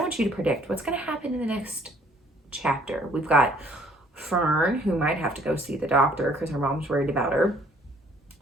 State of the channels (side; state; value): both; normal; correlation 0.61